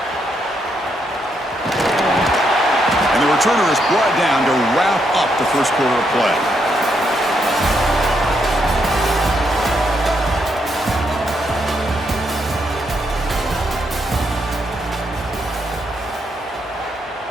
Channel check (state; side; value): normal; both; correlation 0.78